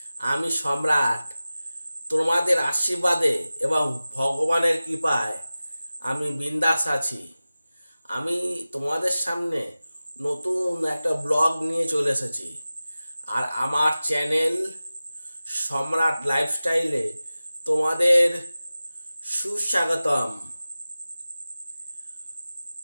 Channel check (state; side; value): inverted; both; correlation -0.96